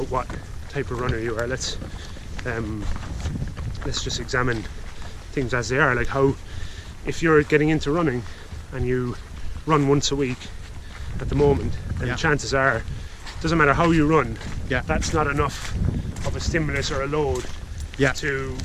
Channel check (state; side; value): identical; both; correlation 1.00